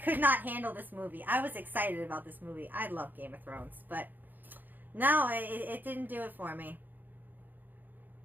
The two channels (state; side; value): late; left; 0.087 ms